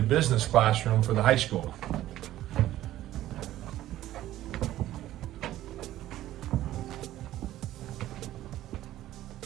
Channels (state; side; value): quieter; left; 14.0 dB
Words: business classroom for the high school.